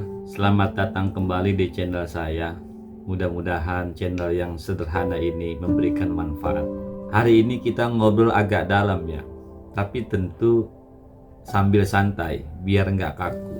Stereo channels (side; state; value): both; identical; correlation 1.00